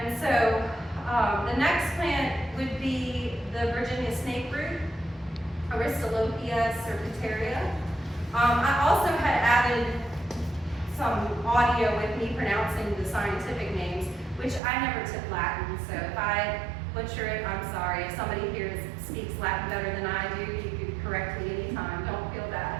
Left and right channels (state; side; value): drops out; left; at 14.6 s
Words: so the next plant would be the Virginia snake root, Aristolochia serpentaria. I also had added some audio with me pronouncing the scientific names, which I never took Latin, so if I butcher it, I'm sorry. If somebody here speaks Latin better than I do, you can correct me anytime, don't feel